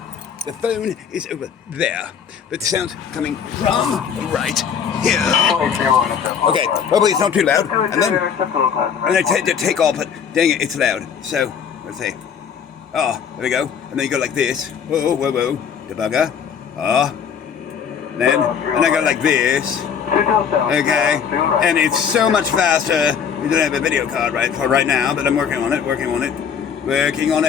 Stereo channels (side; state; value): right; quieter; 7.4 dB